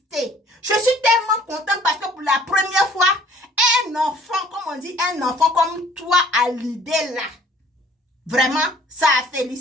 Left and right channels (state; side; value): normal; both; correlation 0.55